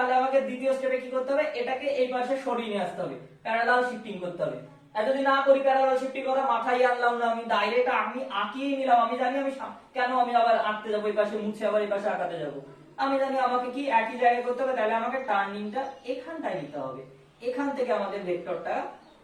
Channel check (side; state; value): both; identical; correlation 1.00